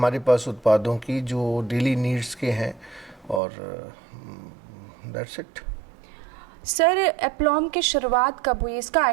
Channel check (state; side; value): drops out; left; at 3.4 s